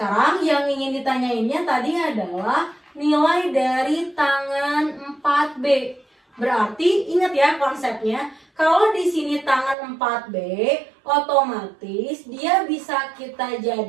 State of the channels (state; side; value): drops out; left; at 9.8 s